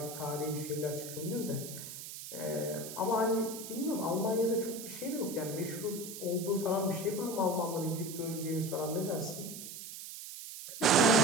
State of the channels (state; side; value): noise; right; hiss, 10 dB below the sound